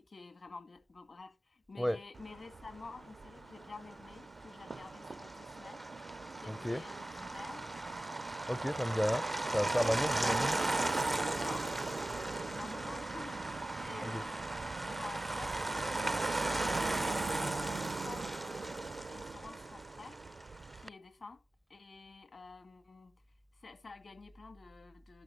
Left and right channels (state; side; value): normal; both; correlation 0.95